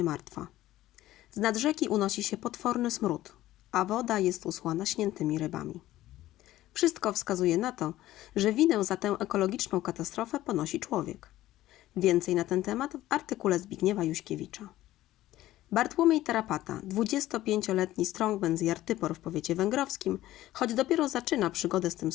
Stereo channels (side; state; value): right; quieter; 15.1 dB